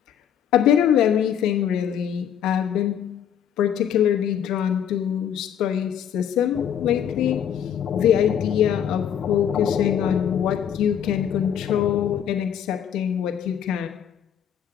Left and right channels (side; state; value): right; quieter; 9.1 dB